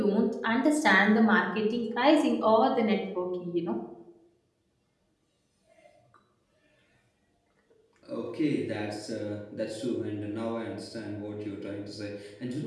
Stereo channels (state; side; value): identical; both; correlation 1.00